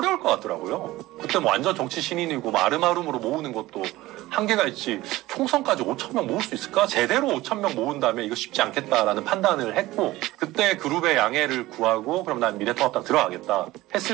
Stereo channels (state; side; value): quieter; left; 17.8 dB